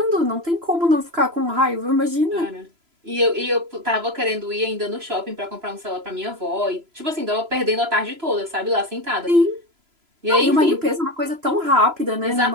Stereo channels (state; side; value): late; left; 3.0 ms